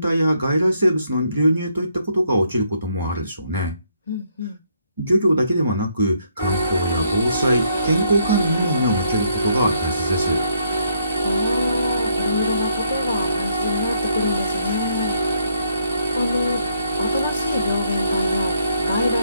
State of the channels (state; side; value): inverted; both; correlation -0.72